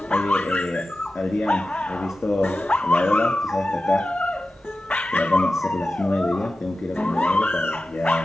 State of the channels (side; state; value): both; normal; correlation 0.94